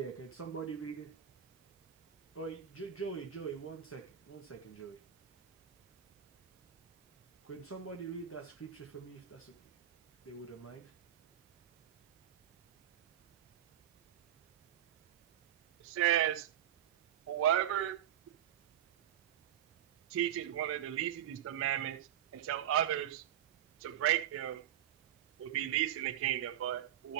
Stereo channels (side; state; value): left; quieter; 10.7 dB